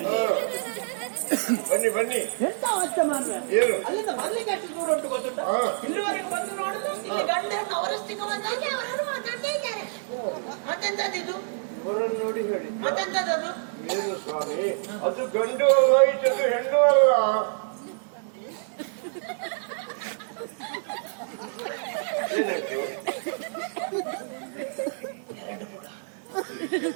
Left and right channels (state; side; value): silent; left; digital silence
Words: ಬನ್ನಿ ಬನ್ನಿ. ಎಂತ ಅವಸ್ಥೆ ಮಾಡ್ರೆ? ಏನು? ಅಲ್ಲಿಂದ ಬರ್ಲಿಕ್ಕೆ ಎಷ್ಟು ದೂರ ಉಂಟು ಗೊತ್ತುಂಟ? ಇಲ್ಲಿವರೆಗೆ ಬಂದು ನೋಡುದು, ಇಲ್ಲಿ ಗಂಡ ಹೆಣ್ಣು ಅವರಷ್ಟಕ್ಕೆ ಬಂದಾಗಿ ಅವರು ಮಾತಾಡ್ತಾ ಇದ್ದಾರೆ. ಮತ್ತೆಂತದ್ದು? ಇವರನ್ನು ನೋಡಿ ಹೇಳಿ. ಮತ್ತೆಂತದ್ದು? ಏನು ಸ್ವಾಮಿ? ಅದು ಗಂಡು ಅಲ್ಲ, ಇದು ಹೆಣ್ಣು ಅಲ್ಲ. ಏನಾಯ್ತು?